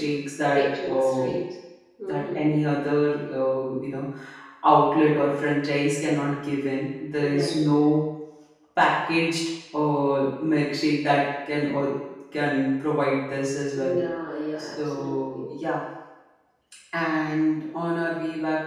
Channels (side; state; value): both; identical; correlation 1.00